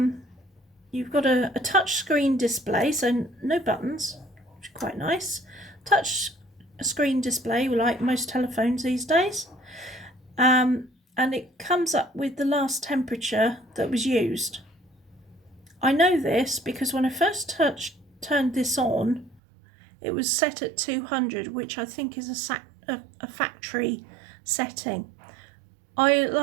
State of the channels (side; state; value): left; drops out; at 19.4 s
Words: you've got a touch screen display, so no buttons, which is quite nice. Touch screen display, like most telephones these days. And it comes up with the last temperature that was used. I know this because when I first turned this on, it was set at 200, which I think is a factory setting.